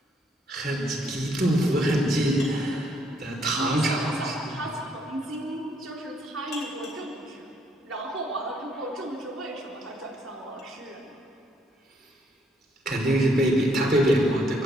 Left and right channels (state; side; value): normal; both; correlation 0.70